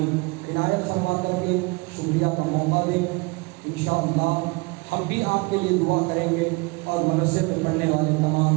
عنایت فرما کر کے شکریہ کا موقع دیں. انشاءاللہ ہم بھی آپ کے لیے دعا کریں گے اور مدرسے میں پڑھنے والے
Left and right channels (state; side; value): quieter; left; 27.0 dB